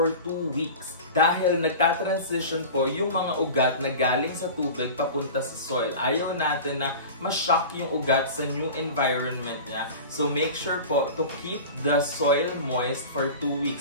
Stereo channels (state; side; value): inverted; both; correlation -0.34